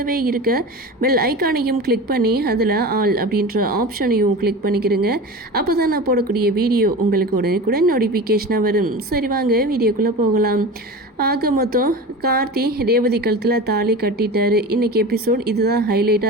இருக்க பெல் ஐக்கானையும் கிளிக் பண்ணி அதில் ஆல் அப்படின்ற ஆப்ஷனையும் கிளிக் பண்ணிக்கிறீங்க. அப்போ தான் நான் போடக்கூடிய வீடியோ உங்களுக்கு உடனுக்குடன் நோட்டிஃபிகேஷனாக வரும். சரி வாங்க வீடியோக்குள்ளே போகலாம். ஆக மொத்தம் கார்த்தி ரேவதி கழுத்தில் தாலி கட்டிட்டாரு. இன்றைக்கி எபிசோட் இதுதான்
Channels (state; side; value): normal; both; correlation 0.31